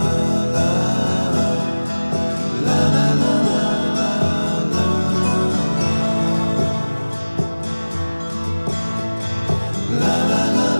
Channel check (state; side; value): inverted; both; correlation -1.00